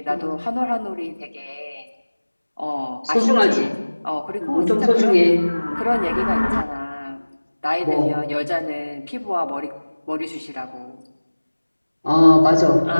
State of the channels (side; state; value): both; inverted; correlation -1.00